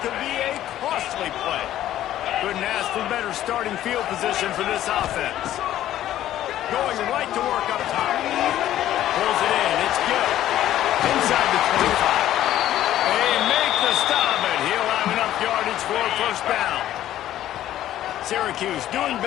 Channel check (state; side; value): quieter; right; 12.8 dB